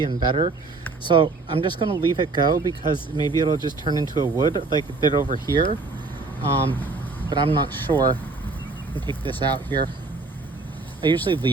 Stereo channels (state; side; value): quieter; left; 3.7 dB